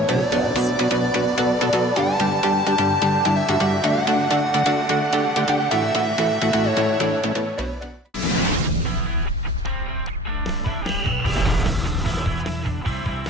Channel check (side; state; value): both; normal; correlation 0.52